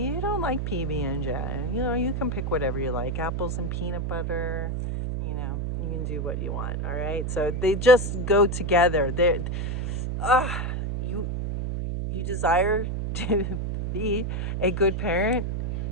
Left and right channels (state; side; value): noise; right; hum, 1 dB below the sound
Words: you don't like PB and J. You know, you can pick whatever you like. Apples and peanut butter. You know, you can do what you want. All right. So they just go together. Uh, you you desire to be a good parent.